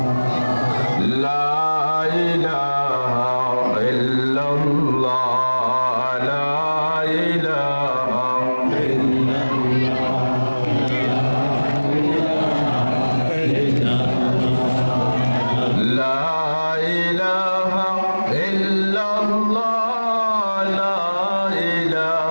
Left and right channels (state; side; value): inverted; both; correlation -1.00